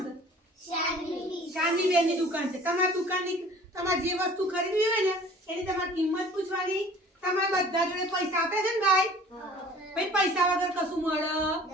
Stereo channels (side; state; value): both; normal; correlation 0.48